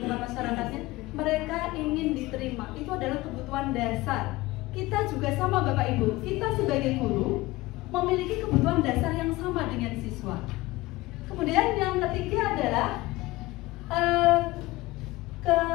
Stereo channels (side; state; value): right; quieter; 19.6 dB